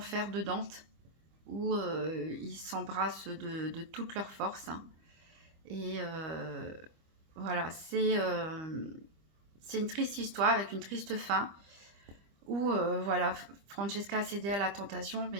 de Dante, où ils s'embrassent de toute leur force, hein. Et voilà, c'est une triste histoire avec une triste fin, où voilà, Francesca a cédé à la tentation,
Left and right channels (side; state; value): left; late; 25 ms